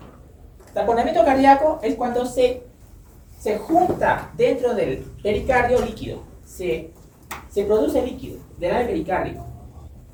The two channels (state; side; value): identical; both; correlation 1.00